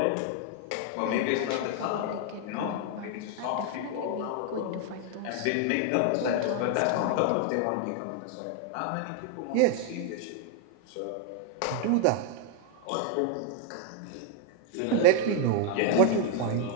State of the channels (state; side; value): different; both; correlation 0.00